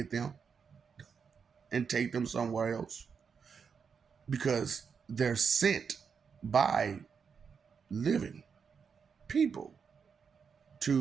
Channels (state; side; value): quieter; left; 6.2 dB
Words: them and take them somewhere else? Because they're sent by living people